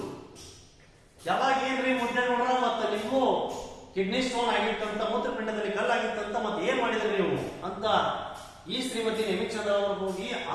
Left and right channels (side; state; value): both; identical; correlation 1.00